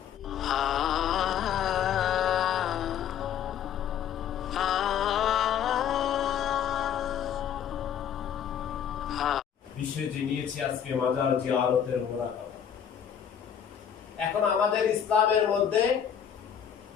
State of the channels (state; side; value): quieter; right; 8.8 dB